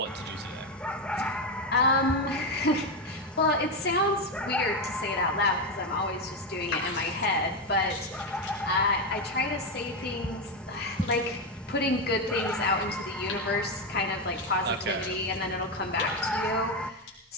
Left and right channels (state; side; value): normal; both; correlation 0.10